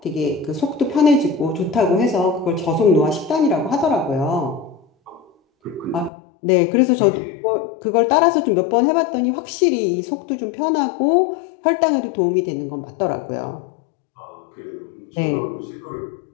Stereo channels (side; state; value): right; drops out; at 6.1 s